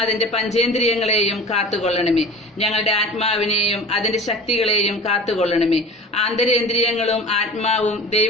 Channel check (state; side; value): normal; both; correlation 0.39